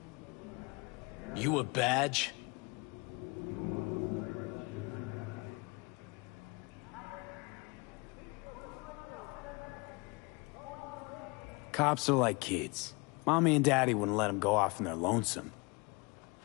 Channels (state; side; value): quieter; right; 27.9 dB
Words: You a badge? Cops are like kids. Mommy and Daddy wouldn't let them go off in their lonesome.